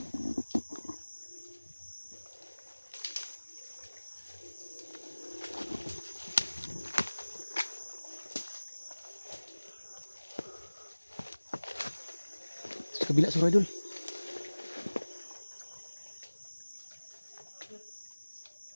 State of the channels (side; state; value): both; inverted; correlation -1.00